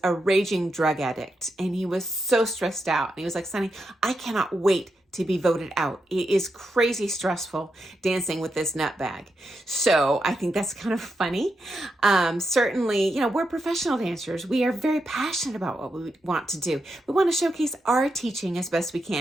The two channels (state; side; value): normal; both; correlation 0.85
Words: a raging drug addict, and he was so stressed out. And he was like, Sunny, I cannot wait to be voted out. It is crazy stressful dancing with this nutbag. So I think that's kind of funny. Certainly, you know, we're professional dancers. We are very passionate about what we want to do. We want to showcase our teaching as best we